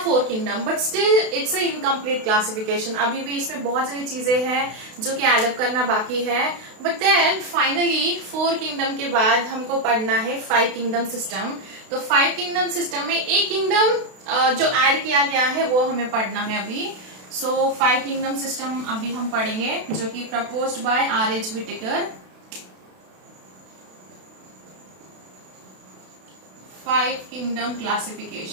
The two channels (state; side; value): late; left; 32 ms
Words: 4 kingdom, but still it's a incomplete classification. अभी भी इसमें बहुत सारी चीजें हैं जो कि एडअप करना बाकी है। बट देन फाइनली 4 किंगडम के बाद हमको पढ़ना है 5 किंगडम सिस्टम। तो 5 किंगडम सिस्टम में एक किंगडम जो ऐड किया गया है वो हमें पढ़ना है अभी। सो 5 किंगडम सिस्टम अभी हम पढ़ेंगे, जो कि proposed by R.H. Whittaker। 5 kingdom